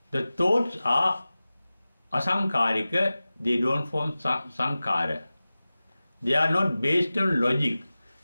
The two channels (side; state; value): both; inverted; correlation -0.97